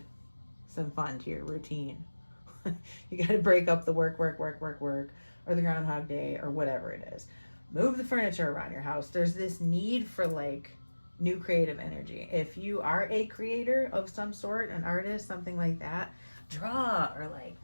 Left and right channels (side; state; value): both; inverted; correlation -1.00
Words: some fun to your routine. You got to break up the work, or the Groundhog Day, or whatever it is. Move the furniture around your house. There's this need for, like, new creative energy. If you are a creator of some sort, an artist, something like that, draw, or, like,